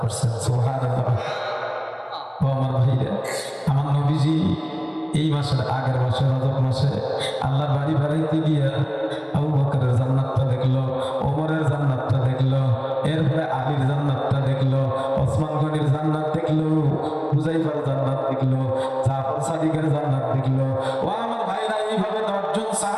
সুবহানাল্লাহ। ও আমার ভাইরা, আমার নবীজি এই মাসের আগের মাসে রজব মাসে আল্লাহর বাড়ি বাড়িতে গিয়া আবু বকরের জান্নাতটা দেখলো, ওমরের জান্নাতটা দেখলো, এরপরে আলীর জান্নাতটা দেখলো, ওসমান গনির জান্নাত দেখলো, হুযায়ফার জান্নাত দেখলো, জাফর সাদিকের জান্নাত দেখলো। ও আমার ভাইরা, এইভাবে 10 জন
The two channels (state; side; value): identical; both; correlation 1.00